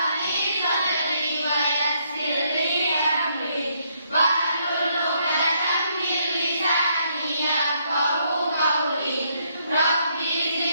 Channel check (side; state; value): both; inverted; correlation -0.73